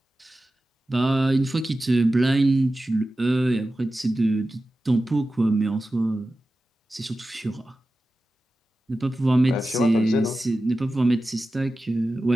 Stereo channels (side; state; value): both; normal; correlation 0.94